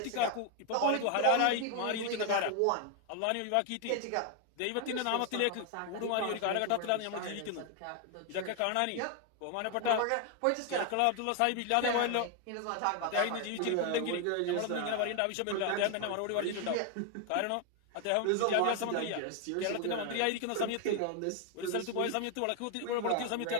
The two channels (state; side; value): different; both; correlation 0.01